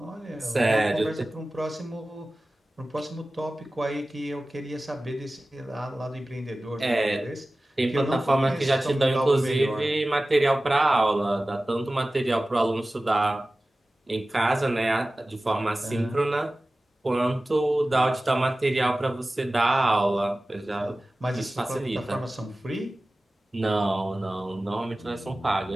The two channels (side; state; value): both; normal; correlation 0.96